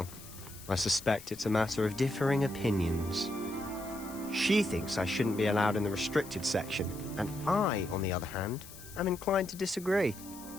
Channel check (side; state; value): left; noise; hiss, 16 dB below the sound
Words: I suspect it's a matter of differing opinions. She thinks I shouldn't be allowed in the restricted section, and I, on the other hand, am inclined to disagree.